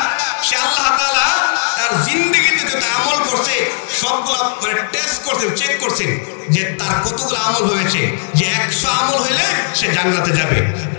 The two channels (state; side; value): silent; right; 55 dB below the other